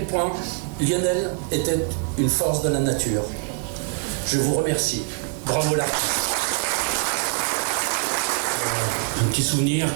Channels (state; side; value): quieter; left; 37.5 dB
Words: point Lionel était une force de la nature. Je vous remercie. Bravo là. Un petit souvenir